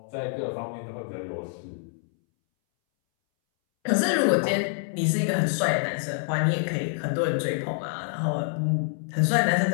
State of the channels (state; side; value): silent; right; 61 dB below the other